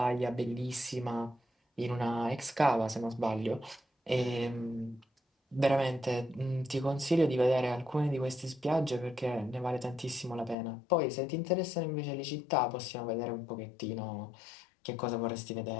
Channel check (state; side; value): drops out; right; at 10.6 s